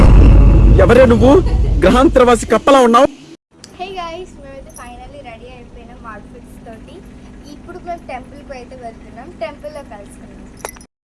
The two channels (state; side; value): identical; both; correlation 1.00